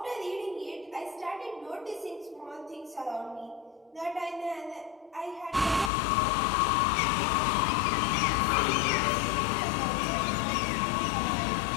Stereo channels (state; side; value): drops out; right; at 5.9 s